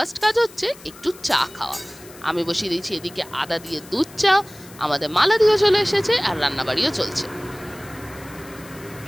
কাজ হচ্ছে একটু চা খাওয়া। আমি বসিয়ে দিয়েছি এদিকে আদা দিয়ে দুধ চা, আমাদের মালাদিও চলে এসেছে আর রান্নাবাড়িও চলছে।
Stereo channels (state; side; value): noise; left; hiss, 20 dB below the sound